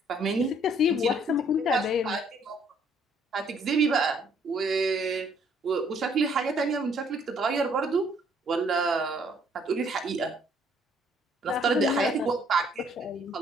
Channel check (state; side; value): normal; both; correlation 0.64